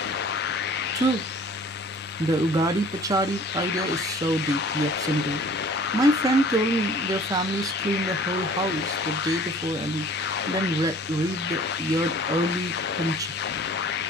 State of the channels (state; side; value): normal; both; correlation 0.50